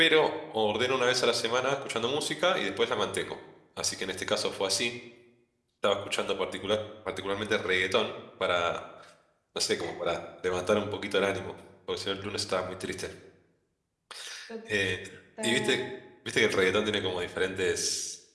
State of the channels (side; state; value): both; identical; correlation 1.00